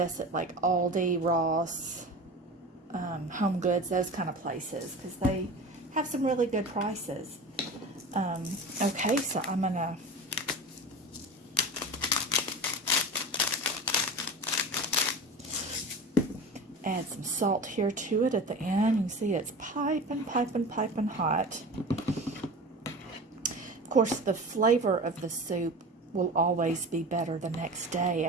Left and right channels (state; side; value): normal; both; correlation 0.32